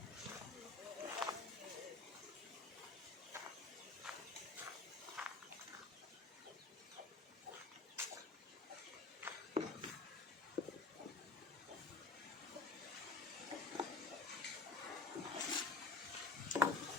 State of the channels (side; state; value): right; quieter; 3.9 dB